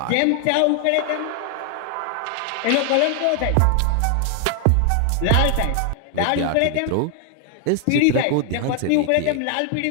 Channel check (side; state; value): both; different; correlation 0.00